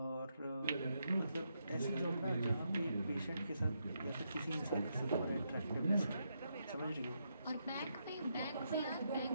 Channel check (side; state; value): both; inverted; correlation -0.81